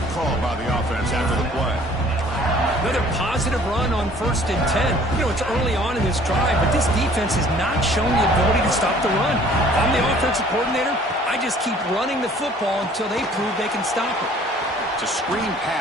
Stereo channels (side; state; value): both; normal; correlation 0.54